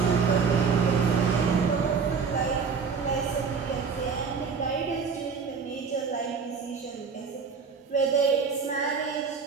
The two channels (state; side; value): quieter; left; 5.6 dB